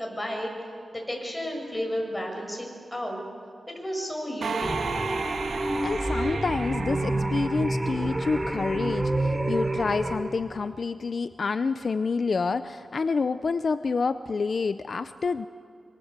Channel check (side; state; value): both; normal; correlation 0.92